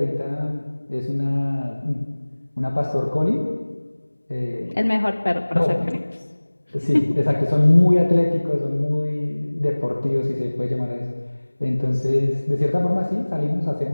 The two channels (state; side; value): inverted; both; correlation -1.00